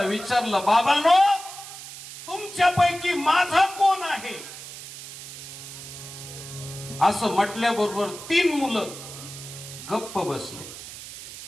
विचारलं बाबांनो तुमच्यापैकी माझा कोण आहे. असं म्हटल्याबरोबर 3 मुलं गप्प बसले.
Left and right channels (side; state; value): right; noise; hiss, 13 dB below the sound